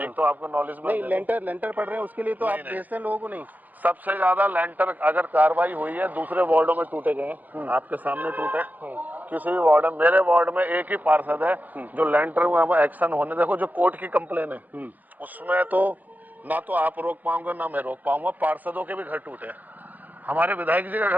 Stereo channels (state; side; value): late; left; 0.082 ms